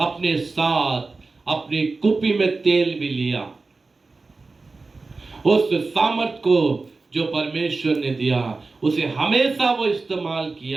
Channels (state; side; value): quieter; left; 3.8 dB